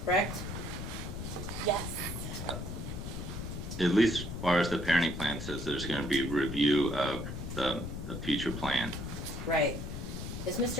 correct? Yes. At least as far as the parenting plan says, there's going to be a review of the future plan. Right. Is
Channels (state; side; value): noise; left; rumble, 6 dB below the sound